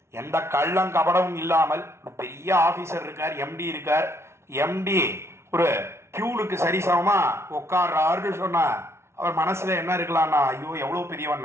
எந்த கள்ளம் கபடமும் இல்லாமல். பெரிய ஆபீசர் இருக்கார், எம்டி இருக்கார். எம்டி ஒரு பியூனுக்கு சரிசமமா உட்கார்றாருன்னு சொன்னா அவர் மனசுல என்ன இருக்கலாம்னா, ஐயோ எவ்வளவு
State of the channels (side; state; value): left; late; 0.13 ms